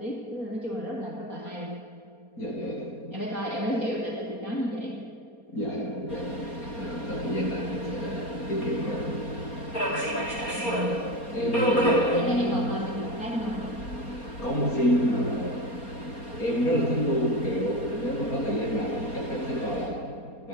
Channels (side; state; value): right; late; 4.3 ms